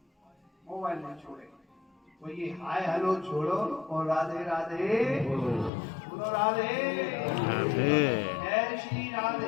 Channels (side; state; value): right; drops out; at 5.7 s